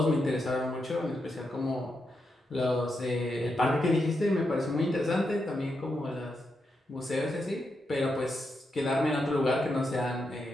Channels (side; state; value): both; normal; correlation 0.84